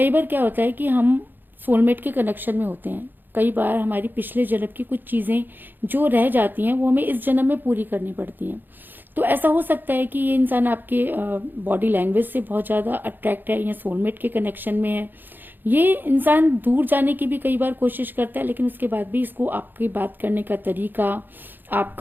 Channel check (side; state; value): left; late; 0.092 ms